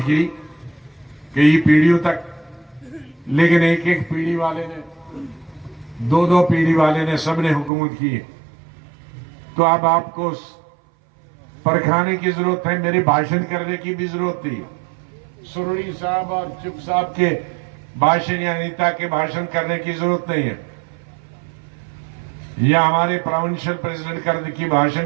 की, कई पीढ़ियों तक, लेकिन एक एक पीढ़ी वाले ने, 2-2 पीढ़ी वाले ने, सबने हुकूमत की है। तो अब आपको परखाने की जरूरत है, मेरे भाषण करने की भी जरूरत नहीं है। सुरड़ी साहब और चुप साहब के भाषण या नेता के भाषण करने की जरूरत नहीं है, या हमारे प्रोविंशियल प्रेसिडेंट करने की भाषण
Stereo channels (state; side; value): drops out; left; at 7.7 s